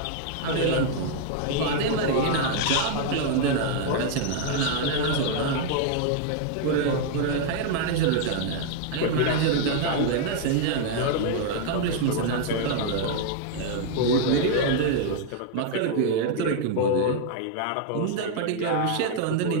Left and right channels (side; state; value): both; different; correlation 0.00